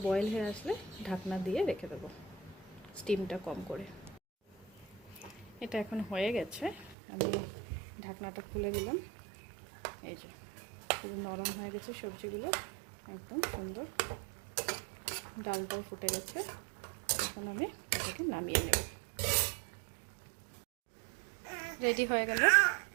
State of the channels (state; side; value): drops out; left; at 7.0 s